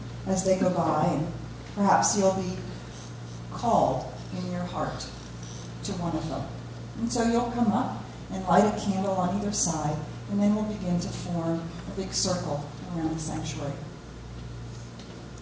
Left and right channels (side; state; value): both; identical; correlation 1.00